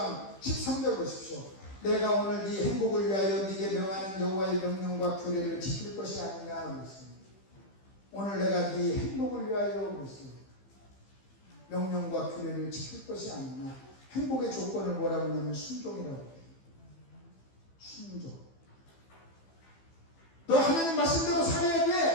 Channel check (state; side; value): late; right; 15 ms